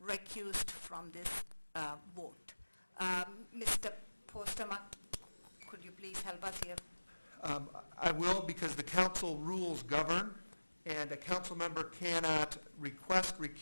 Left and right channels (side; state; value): both; inverted; correlation -1.00